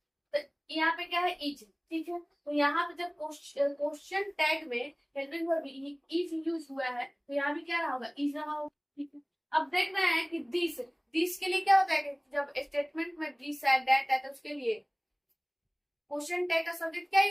तो यहाँ पे क्या है इज, ठीक है। तो यहाँ पे जब क्वेश्चन टैग में हेल्पिंग वर्ब इज यूज हुआ है तो यहाँ भी क्या रहा होगा, इज रहा होगा, ठीक है। अब देख रहे हैं कि दिस के लिए क्या होता है कि जब स्टेटमेंट में दिस है दैट है तो उसके लिए क्वेश्चन टैग का सब्जेक्ट क्या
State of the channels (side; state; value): both; identical; correlation 1.00